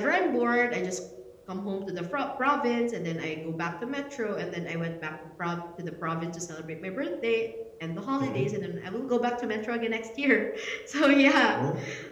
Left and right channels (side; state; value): both; identical; correlation 1.00